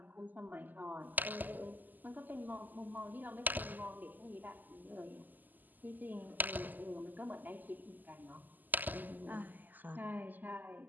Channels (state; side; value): late; left; 0.086 ms